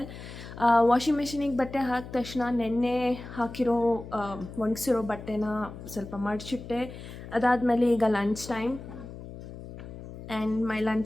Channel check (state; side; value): noise; left; hum, 13 dB below the sound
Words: Washing ಮಿಷಿನಿಗೆ ಬಟ್ಟೆ ಹಾಕಿದ ತಕ್ಷಣ ನೆನ್ನೆ ಒಣಗಿಸಿರೋ ಬಟ್ಟೆನ ಸ್ವಲ್ಪ ಮಡಚಿಟ್ಟೆ. ಅದಾದಮೇಲೆ ಈಗ lunch time and my